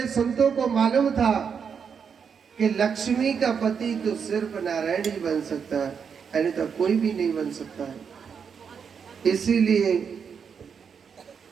संतों को मालूम था कि लक्ष्मी का पति तो सिर्फ नारायण ही बन सकता है, अन्यथा कोई भी नहीं बन सकता है। इसीलिए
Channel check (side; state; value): left; quieter; 6.7 dB